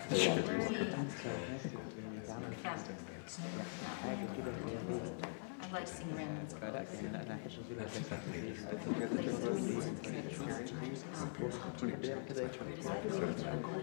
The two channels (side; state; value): right; silent; digital silence